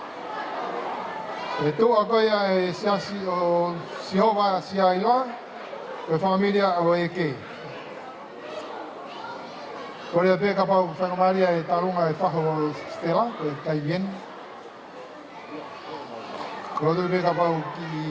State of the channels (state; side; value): identical; both; correlation 1.00